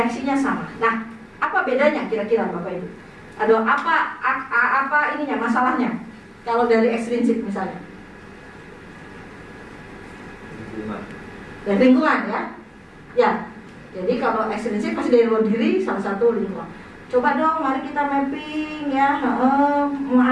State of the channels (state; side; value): identical; both; correlation 1.00